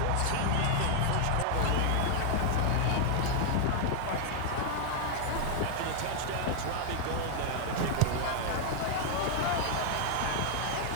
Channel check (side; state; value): both; different; correlation 0.00